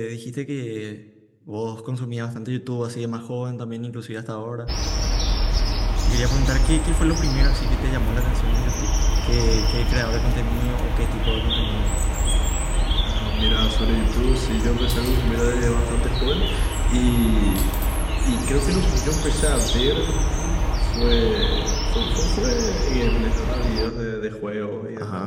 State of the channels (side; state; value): both; identical; correlation 1.00